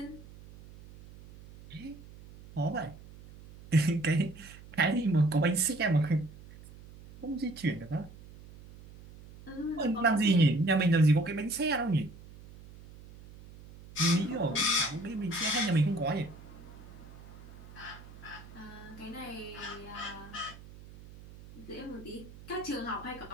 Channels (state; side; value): noise; right; hum, 18 dB below the sound